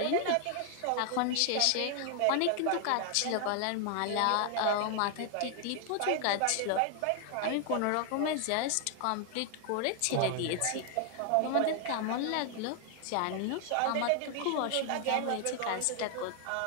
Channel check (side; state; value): both; different; correlation 0.00